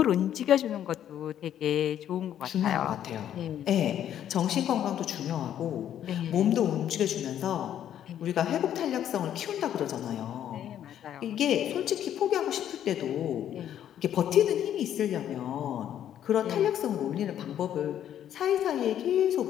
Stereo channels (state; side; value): quieter; right; 10.5 dB